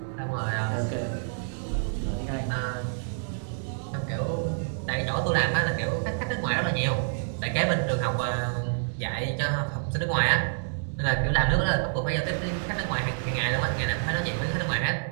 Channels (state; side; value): silent; left; digital silence